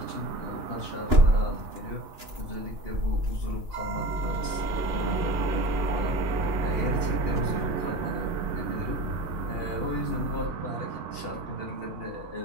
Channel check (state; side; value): late; left; 2.9 ms